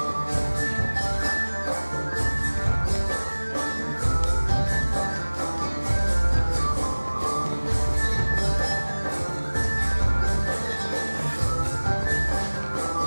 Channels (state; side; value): inverted; both; correlation -1.00